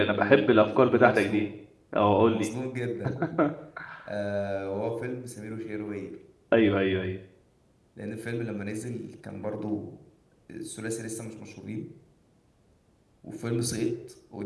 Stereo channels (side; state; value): both; identical; correlation 1.00